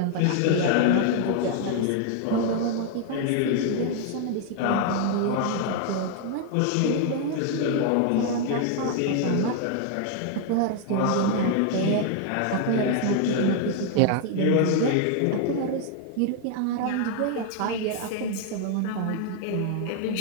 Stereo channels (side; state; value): both; different; correlation 0.00